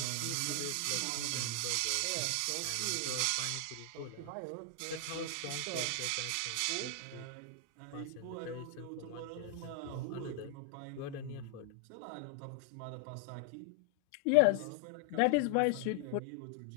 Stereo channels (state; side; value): different; both; correlation 0.00